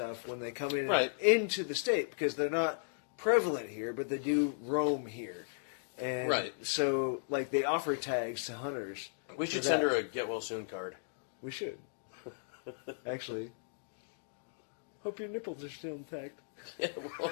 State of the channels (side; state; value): right; silent; digital silence